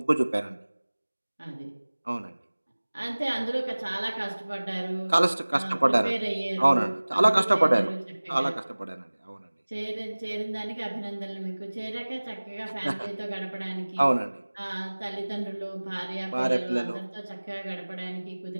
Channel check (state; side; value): inverted; both; correlation -1.00